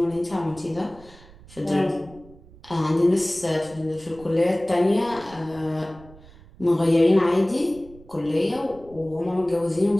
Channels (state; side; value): noise; right; rumble, 22 dB below the sound